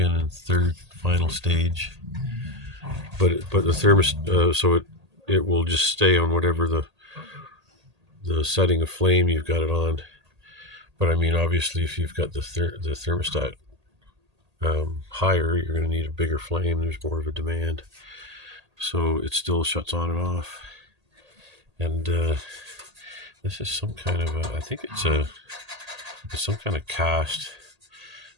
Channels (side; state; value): left; late; 1.8 ms